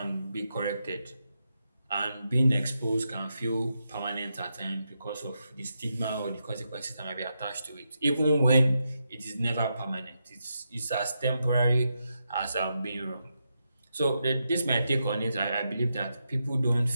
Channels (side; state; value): both; inverted; correlation -0.85